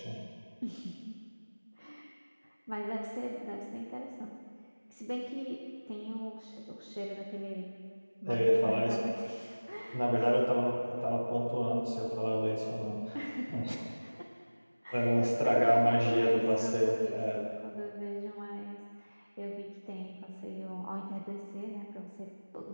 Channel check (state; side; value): inverted; both; correlation -1.00